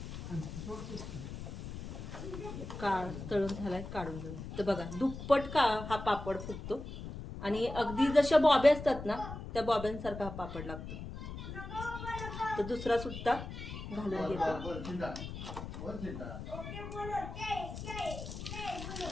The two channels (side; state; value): left; noise; rumble, 9 dB below the sound